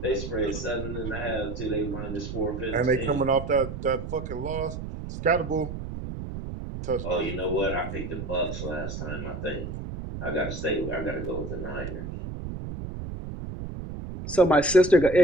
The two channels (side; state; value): right; noise; rumble, 7 dB below the sound